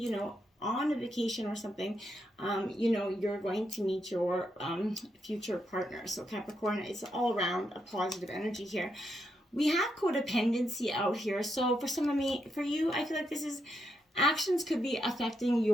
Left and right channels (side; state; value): both; normal; correlation 0.81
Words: know, on a vacation or something, you know, you're going to meet your future partner. So Capricorn, it's all around a positive energy here. We have codependency out here. So for for you, I feel like this is actions could be affecting